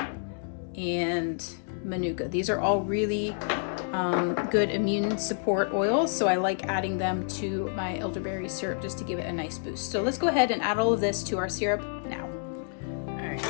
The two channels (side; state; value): right; silent; digital silence